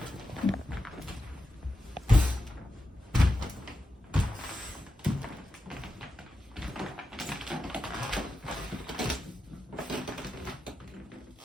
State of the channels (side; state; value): both; normal; correlation 0.89